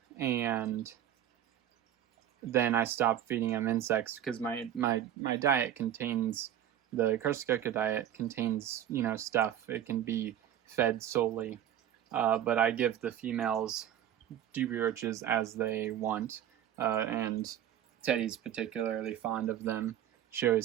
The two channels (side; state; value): left; quieter; 10.8 dB